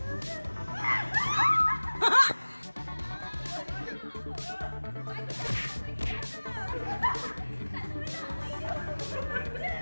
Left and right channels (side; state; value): both; inverted; correlation -1.00